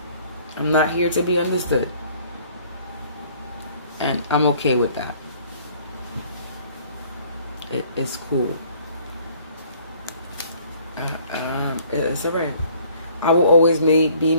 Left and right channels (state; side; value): inverted; both; correlation -0.57